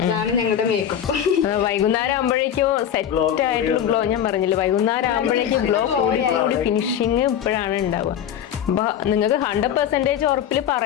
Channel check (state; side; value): quieter; right; 9.6 dB